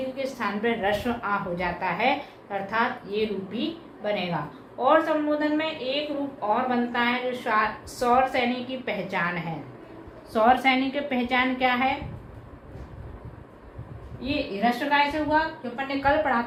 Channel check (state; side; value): identical; both; correlation 1.00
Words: के स्थान पर ह्रस्व आ हो जाता है, अर्थात ये रूप भी बनेगा। और संबोधन में एक रूप और बनता है जो सौर सैनिक की पहचान है। सौर सैनिक की पहचान क्या है? ये ह्रस्व काय से हुआ, जो अपन ने कल पढ़ा